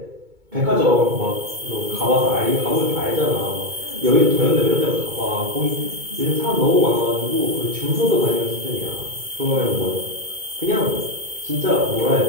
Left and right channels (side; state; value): left; late; 2.2 ms